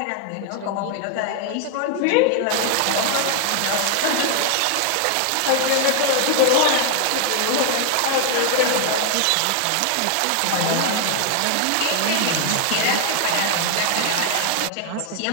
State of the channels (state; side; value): different; both; correlation 0.00